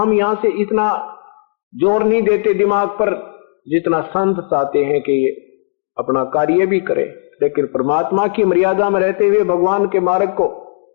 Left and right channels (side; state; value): right; silent; digital silence